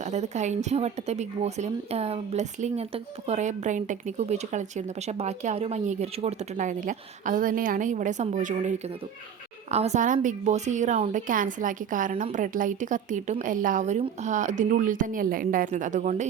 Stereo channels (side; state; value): left; quieter; 7.8 dB